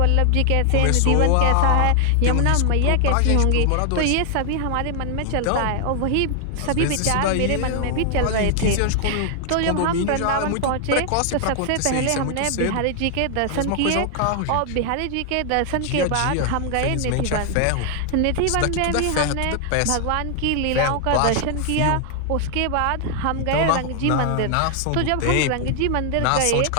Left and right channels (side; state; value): both; different; correlation 0.00